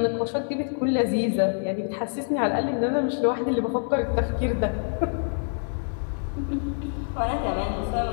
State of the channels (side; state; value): right; silent; 61 dB below the other